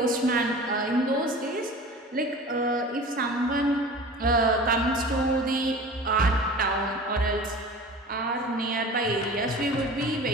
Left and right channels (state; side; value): normal; both; correlation 0.38